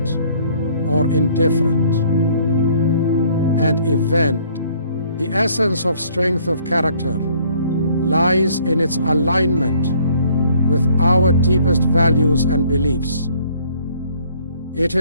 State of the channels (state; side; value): inverted; both; correlation -0.60